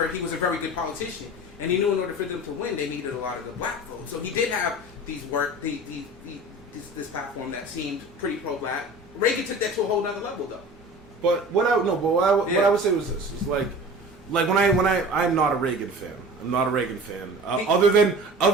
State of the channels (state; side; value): normal; both; correlation 0.39